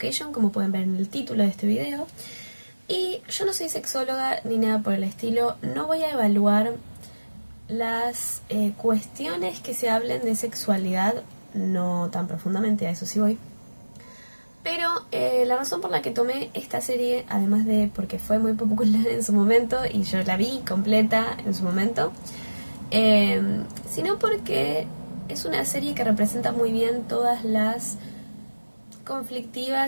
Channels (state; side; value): inverted; both; correlation -1.00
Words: como pueden ver en el título de este video. Y yo no soy sexóloga ni nada por el estilo, no voy a evaluar las cuestiones que se hablen de sexualidad, no tan profundamente, a eso sí voy. Pero la razón por la que tomé esta serie, además de porque fue muy popular en su momento y yo la vi completa en su momento, sino porque es una serie que representa muy bien todas las